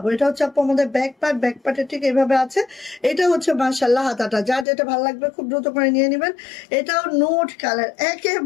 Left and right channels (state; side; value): drops out; right; at 4.7 s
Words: এটা হচ্ছে আপু আমাদের ব্যাক পার্ট, ব্যাক পার্টের ঠিক এইভাবে আছে। এটা হচ্ছে মাশাআল্লাহ হাতাটা, যার যেটা ভালো লাগবে খুব দ্রুত করে নিয়ে নেবেন। এটাও নোট কালার,